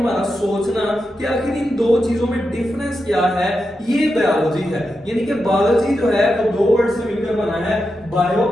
सोचना कि आखिर इन दो चीजों में डिफरेंस क्या है, ये बायोलॉजी है। यानी कि बायोलॉजी जो है वो दो वर्ड से मिलकर बना है, बायो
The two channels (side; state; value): both; normal; correlation 0.88